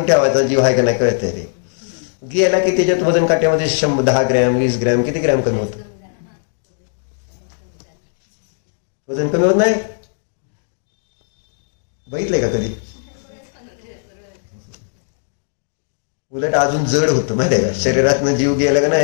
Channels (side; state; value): right; silent; digital silence